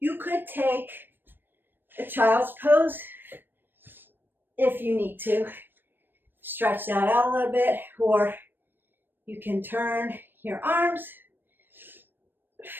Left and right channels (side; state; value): left; late; 0.095 ms